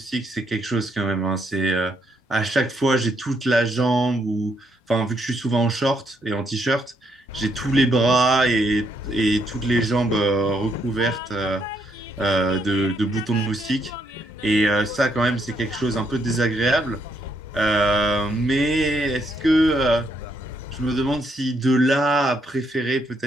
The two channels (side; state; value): both; normal; correlation 0.75